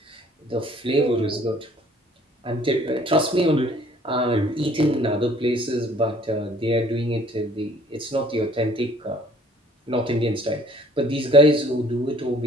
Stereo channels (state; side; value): normal; both; correlation 0.57